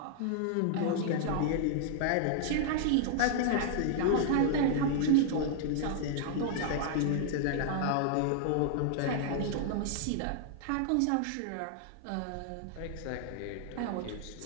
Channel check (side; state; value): both; different; correlation -0.01